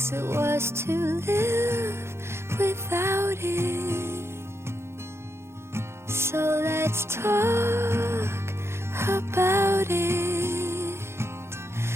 it worse to live without it. So let's talk about it.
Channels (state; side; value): late; left; 0.12 ms